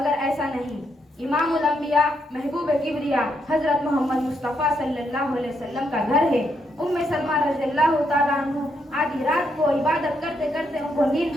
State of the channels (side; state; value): both; normal; correlation 0.78